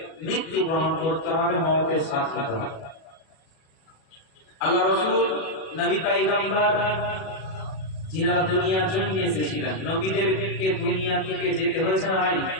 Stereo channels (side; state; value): right; late; 37 ms